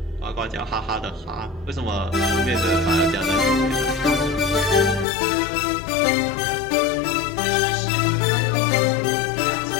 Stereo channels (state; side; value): drops out; right; at 5.1 s